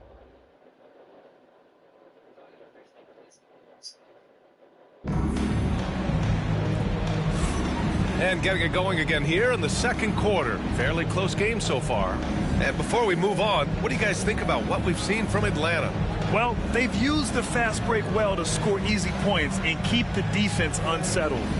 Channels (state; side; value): identical; both; correlation 1.00